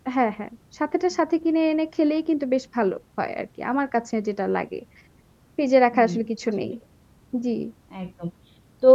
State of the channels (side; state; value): both; identical; correlation 1.00